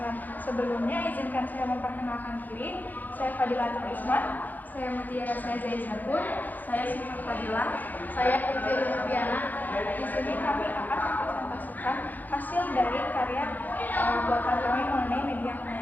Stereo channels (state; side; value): late; right; 0.084 ms